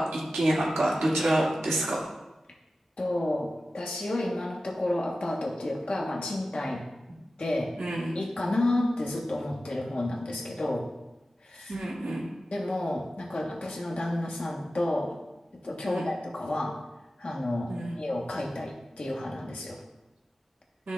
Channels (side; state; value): both; normal; correlation 0.94